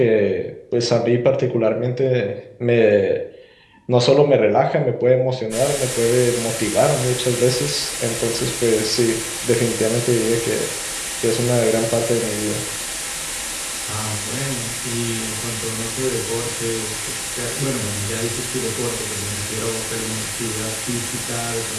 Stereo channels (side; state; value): both; identical; correlation 1.00